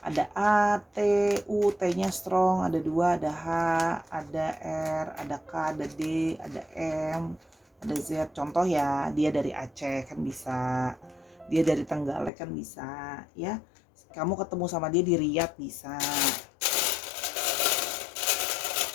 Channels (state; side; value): drops out; right; at 12.3 s